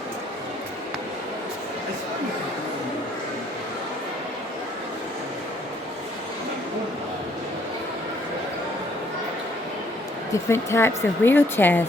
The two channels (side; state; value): both; normal; correlation 0.65